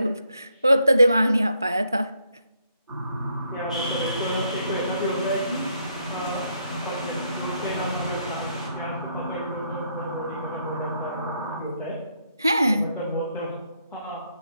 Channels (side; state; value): both; inverted; correlation -0.74